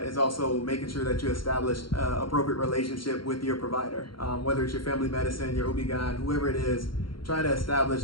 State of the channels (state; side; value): late; right; 0.73 ms